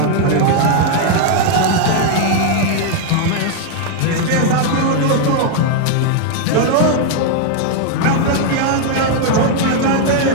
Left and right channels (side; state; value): both; different; correlation 0.00